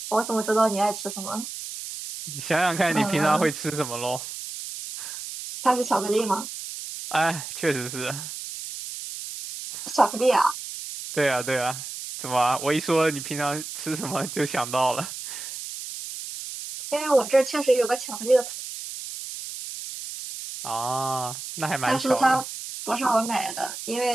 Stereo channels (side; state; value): right; noise; hiss, 9 dB below the sound